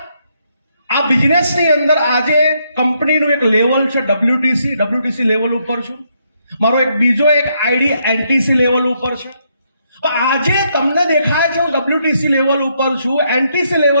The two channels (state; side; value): inverted; both; correlation -0.75